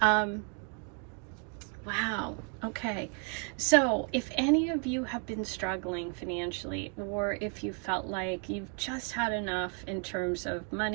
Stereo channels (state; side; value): quieter; left; 38.4 dB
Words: Wow. Okay. So if any of you have been struggling financially, or if you felt like you've just had enough in terms of